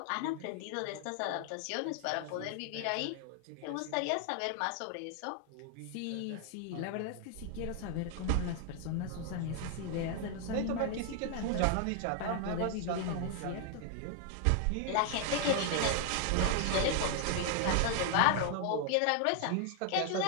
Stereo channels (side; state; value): both; different; correlation 0.00